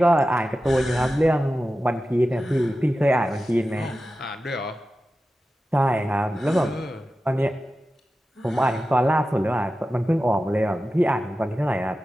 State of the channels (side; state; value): both; normal; correlation 0.93